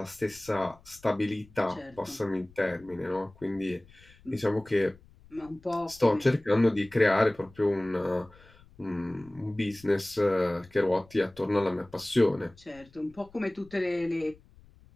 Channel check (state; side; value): noise; left; rumble, 25 dB below the sound